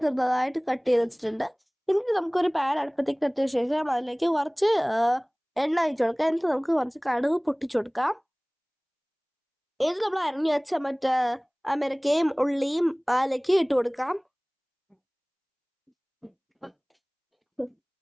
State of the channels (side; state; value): both; identical; correlation 1.00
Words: ചെറുതായിട്ട് കട്ട് ചെയ്ത് വെച്ചിട്ടുണ്ട്. എന്നിട്ട് നമുക്കൊരു പാൻ അടുപ്പത്തേക്ക് എത്തിയ ശേഷം അതിലേക്ക് കുറച്ച് എണ്ണ ഒഴിച്ചു കൊടുക്കാം. എന്നിട്ട് നമുക്ക് കുറച്ച് കടുക് പൊട്ടിച്ചു കൊടുക്കാം. എന്നിട്ട് നമ്മൾ അരിഞ്ഞു വെച്ച മറ്റേ അമേരിക്കയും ഉള്ളിയും അതിലേക്ക് ഇട്ട് കൊടുക്കാം.